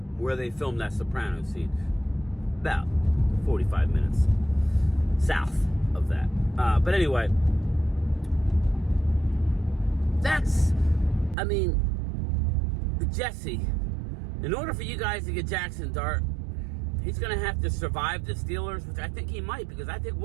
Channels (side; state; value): left; drops out; at 11.4 s